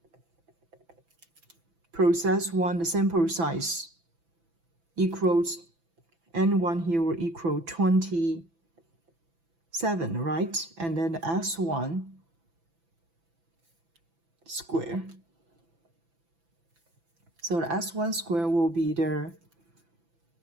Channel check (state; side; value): late; left; 6.0 ms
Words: Process 1, the sample size equals N1 here will equal 27, right? And then the S1 square. So the S1 square will be the